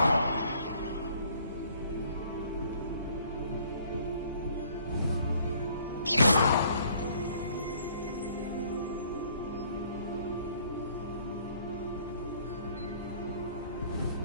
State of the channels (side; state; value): both; inverted; correlation -0.59